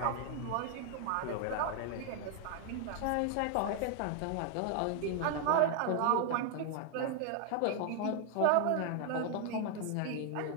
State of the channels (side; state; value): both; different; correlation 0.01